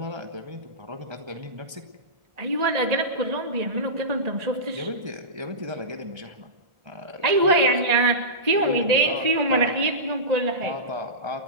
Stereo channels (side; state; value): left; late; 1.3 ms